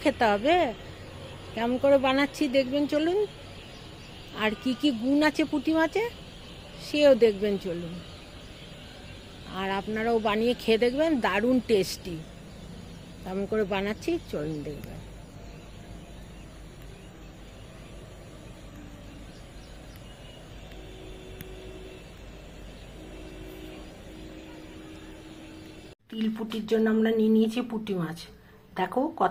খেতে হবে। কেমন করে বানাচ্ছি দেখবেন চলুন। আর কি কি গুণ আছে পুঁটি মাছে সেও দেখবেন চলুন। আর আপনারাও বানিয়ে খেয়ে দেখবেন, দারুণ টেস্টি। কেমন করে বানাচ্ছি চলুন দেখবেন। তিল পুঁটির জন্য আমরা নিয়ে নিয়েছি পুঁটি মাছ। দেখো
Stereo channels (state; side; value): identical; both; correlation 1.00